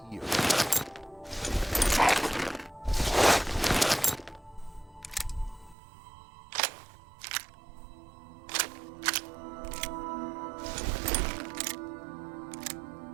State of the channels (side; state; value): left; drops out; at 5.8 s